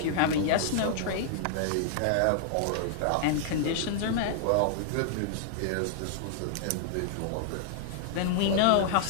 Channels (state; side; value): different; both; correlation -0.01